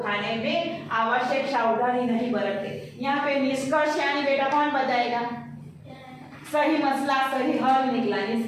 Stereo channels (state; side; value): identical; both; correlation 1.00